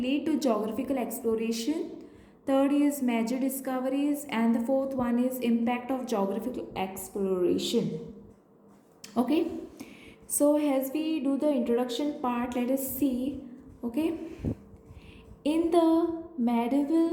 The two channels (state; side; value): identical; both; correlation 1.00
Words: to geographical exploration. Third is major discoveries and the fourth one is impact of geographical exploration. Okay, so as we do the introduction part, let us see. Okay, in the